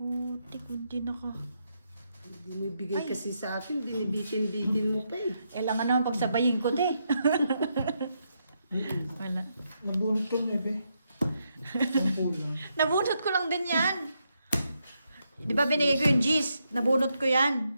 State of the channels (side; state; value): both; inverted; correlation -0.81